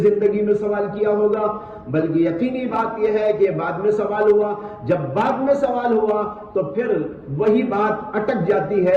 زندگی میں سوال کیا ہوگا، بلکہ یقینی بات یہ ہے کہ بعد میں سوال ہوا۔ جب بعد میں سوال ہوا تو پھر وہی بات اٹک جاتی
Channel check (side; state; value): both; identical; correlation 1.00